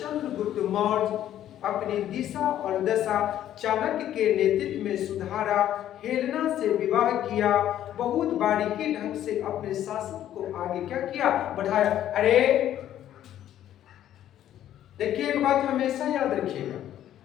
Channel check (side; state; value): right; quieter; 11.6 dB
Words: मौर्य अपनी दिशा और दशा चाणक्य के नेतृत्व में सुधारा, हेलेना से विवाह किया, बहुत बारीकी ढंग से अपने शासन को आगे क्या किया? बढ़ाया। अरे देखिए, एक बात हमेशा याद रखिएगा।